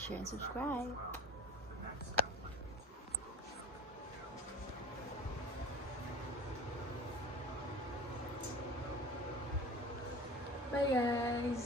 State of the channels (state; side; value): normal; both; correlation 0.38